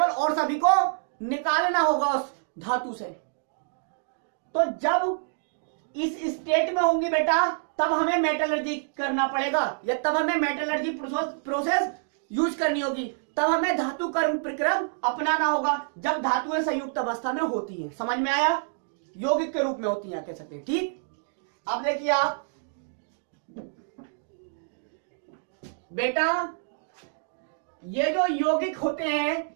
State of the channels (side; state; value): left; silent; digital silence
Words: और सभी को निकालना होगा उस धातु से। तो जब इस स्टेट में होंगी बेटा तब हमें मेटलर्जी करना पड़ेगा, या तब हमें मेटलर्जी प्रोसेस यूज करनी होगी, तब हमें धातु कर्म प्रक्रम अपनाना होगा जब धातुएं संयुक्त अवस्था में होती हैं। समझ में आया? यौगिक के रूप में होती हैं कह सकते हैं। ठीक, अब देखिए आप बेटा, ये जो यौगिक होते हैं